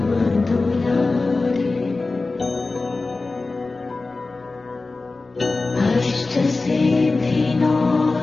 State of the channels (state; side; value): quieter; right; 3.6 dB